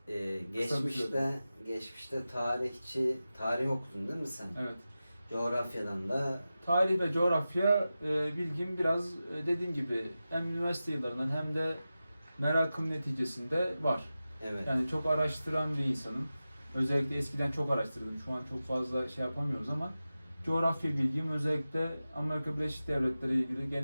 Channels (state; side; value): inverted; both; correlation -0.94